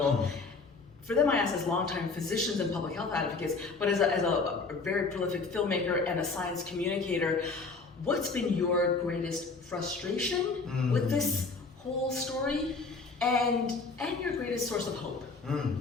For them, I asked as longtime physicians and public health advocates, but as a very prolific filmmaker and a science communicator, what's been your greatest frustration with this whole story, and your greatest source of hope?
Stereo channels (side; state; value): right; quieter; 4.1 dB